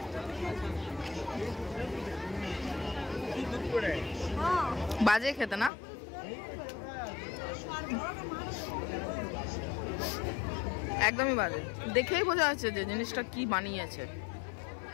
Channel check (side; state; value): right; drops out; at 5.7 s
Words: বাজে খেতে না? একদমই বাজে, দেখেই বোঝা যাচ্ছে যে জিনিসটা কি বানিয়েছে।